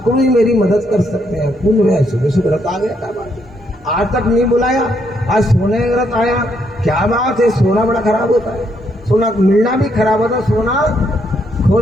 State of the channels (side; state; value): both; normal; correlation 0.74